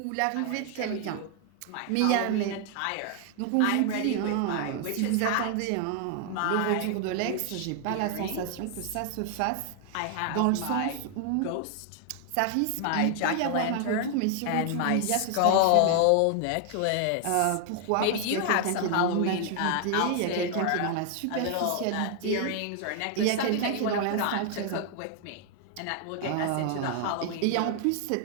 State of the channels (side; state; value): both; different; correlation 0.00